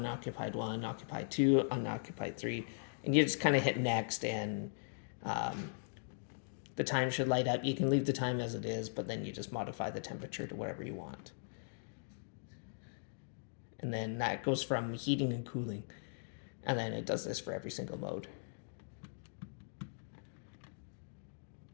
1, occupied 2, unoccupied 3. And you just kind of hit next, and the time should light up. You can leave the time as it is, but then you just modify the temperature to whatever you want. And then that goes from heating and cooling. And then it does this for every single mode.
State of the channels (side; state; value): right; silent; digital silence